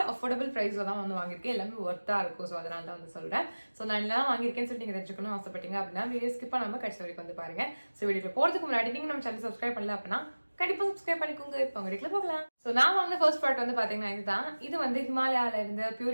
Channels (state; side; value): inverted; both; correlation -1.00